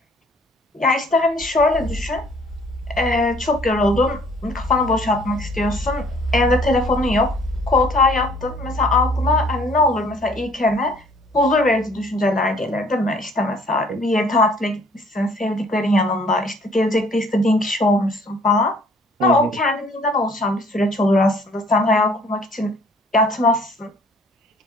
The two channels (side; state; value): both; normal; correlation 0.58